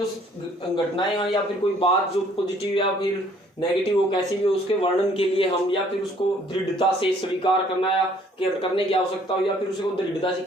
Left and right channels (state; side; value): normal; both; correlation 0.60